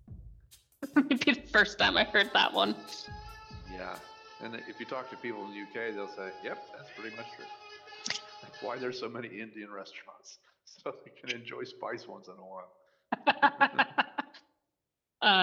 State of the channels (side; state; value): both; identical; correlation 1.00